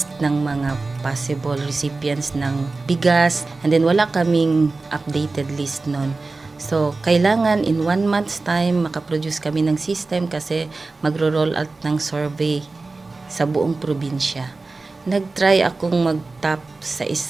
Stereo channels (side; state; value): left; quieter; 3.6 dB